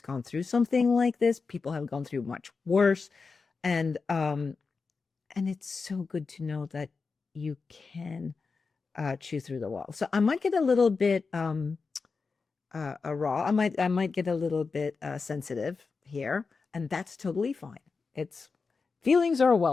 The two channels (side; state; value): right; quieter; 4.6 dB